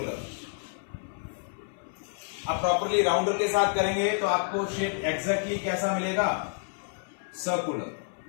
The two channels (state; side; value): silent; right; 55 dB below the other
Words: आप प्रॉपरली राउंडर के साथ करेंगे तो आपको शेप एग्जैक्टली कैसा मिलेगा, सर्कुलर।